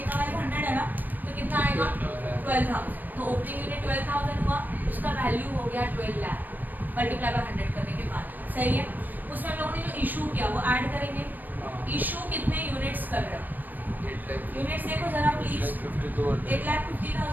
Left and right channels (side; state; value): left; late; 0.089 ms